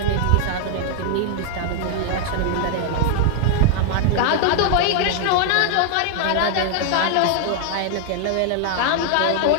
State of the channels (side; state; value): both; different; correlation 0.00